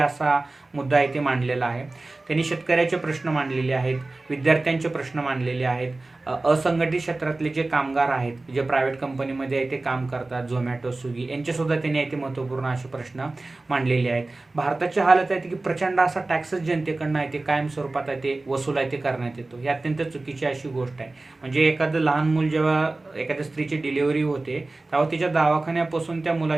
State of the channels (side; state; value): left; quieter; 3.1 dB